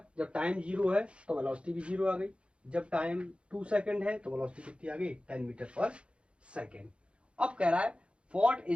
जब टाइम 0 है तो वेलोसिटी भी 0 आ गई, जब टाइम 2 सेकंड है तो वेलोसिटी कितनी आ गई 10 मीटर पर सेकेंड। अब कह रहा है what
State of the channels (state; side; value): late; left; 0.059 ms